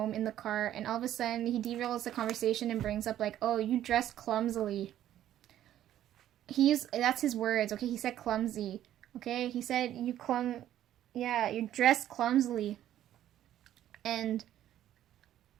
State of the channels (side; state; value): left; quieter; 12.0 dB